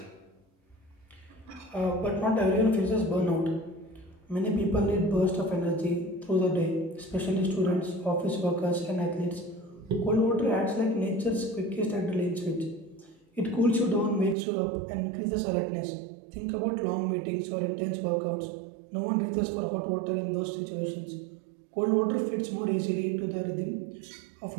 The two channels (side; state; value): left; drops out; at 14.4 s